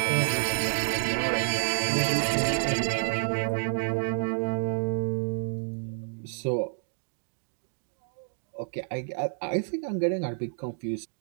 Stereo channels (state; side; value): silent; left; digital silence